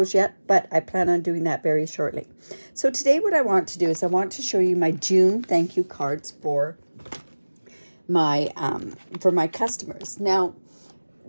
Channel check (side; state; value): both; inverted; correlation -1.00